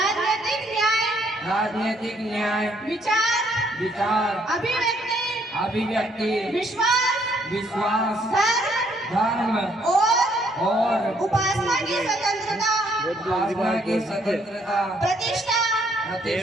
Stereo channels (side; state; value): both; normal; correlation 0.68